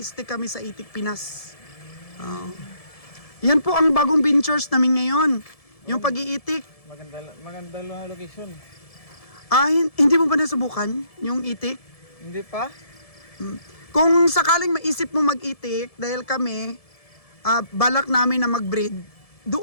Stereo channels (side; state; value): right; late; 1.7 ms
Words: kami sa itik Pinas. Yan po ang bagong ventures namin ngayon. Yung pag-iitik. Maganda lang location. Hindi mo ba nasubukan yung itik? Hindi pa? Kung sakaling maisip mo mag-itik, dahil kami, balak namin na mag-breed,